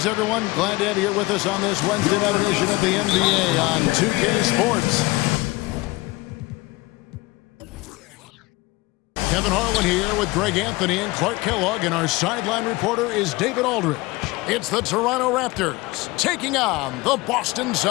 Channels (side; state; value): right; quieter; 21.6 dB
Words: everyone. Glad to have you here with us on this Wednesday night edition of the NBA on 2K Sports. Kevin Harlan here with Greg Anthony and Clark Kellogg, and our sideline reporter is David Aldridge. It's the Toronto Raptors taking on the Boston